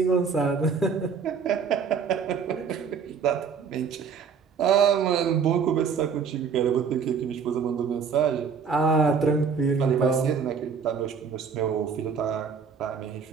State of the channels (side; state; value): left; quieter; 6.1 dB